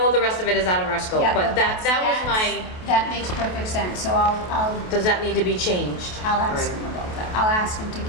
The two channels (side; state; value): right; late; 28 ms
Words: all the rest of it is out of our scope, Yeah, but that was my, that makes perfect sense, so I'll does that need to be changed? ask Right. him about that. I'll ask him to